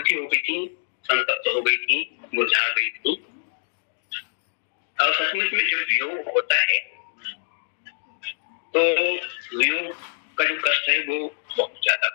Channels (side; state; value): right; silent; digital silence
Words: हो गई थी, संतप्त हो गई थी, मुरझा गई थी। और सचमुच में जब वियोग होता है तो वियोग का जो कष्ट है वो बहुत ज्यादा